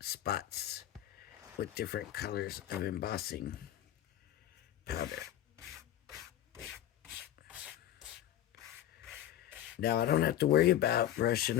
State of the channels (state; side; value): quieter; right; 12.1 dB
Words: spots with different colors of embossing powder. Now I don't have to worry about brushing